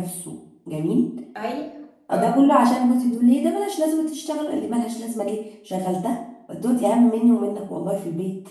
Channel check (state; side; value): identical; both; correlation 1.00